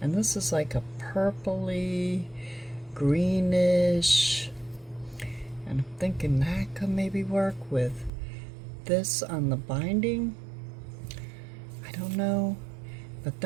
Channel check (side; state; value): left; drops out; at 8.1 s